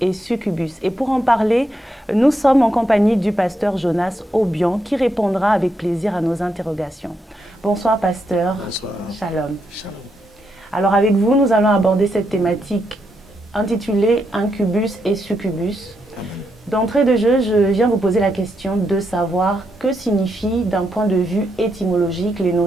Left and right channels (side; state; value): both; normal; correlation 0.81